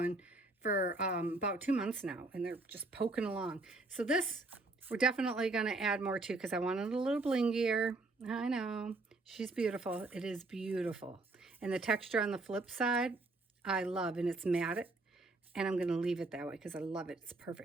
for about 2 months now, and they're just poking along. So this, we're definitely going to add more to because I wanted a little blingier. I know. She's beautiful. It is beautiful. And the texture on the flip side, I love, and it's matte. And I'm going to leave it that way because I love it. It's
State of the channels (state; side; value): quieter; left; 3.2 dB